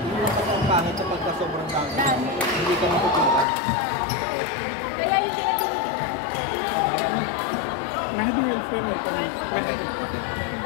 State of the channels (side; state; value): right; drops out; at 3.5 s